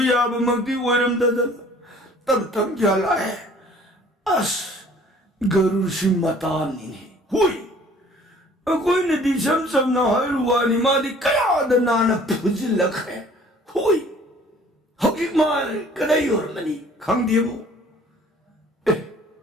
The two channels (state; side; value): normal; both; correlation 0.53